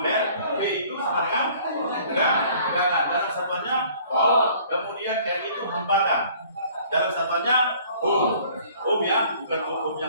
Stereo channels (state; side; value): inverted; both; correlation -0.54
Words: V itu sama dengan tegangan. Dalam satuannya volt. Kemudian R itu hambatan. Dalam satuannya Ohm. Ohm ya, bukan Ohm